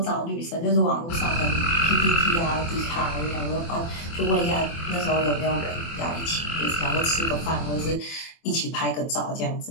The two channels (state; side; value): late; right; 24 ms